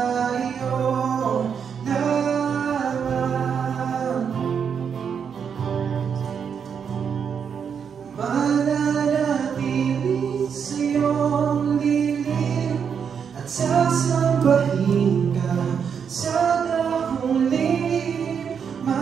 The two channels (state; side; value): quieter; left; 7.1 dB